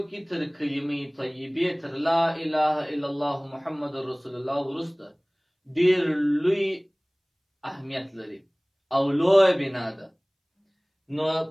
کې تر کلمې طیبې تر لا اله الا الله محمد رسول الله وروسته ډیر لوی اهمیت لري او لوی بنا ده. نو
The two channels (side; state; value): both; identical; correlation 1.00